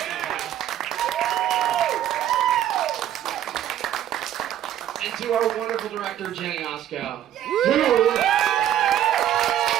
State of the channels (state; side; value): quieter; left; 11.4 dB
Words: And to our wonderful director, Jenny Osco, who